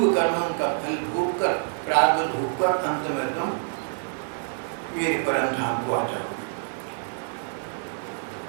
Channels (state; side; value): silent; left; 57 dB below the other